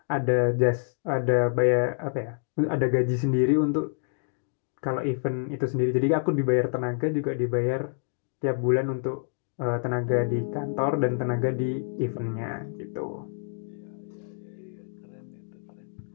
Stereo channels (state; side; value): silent; right; digital silence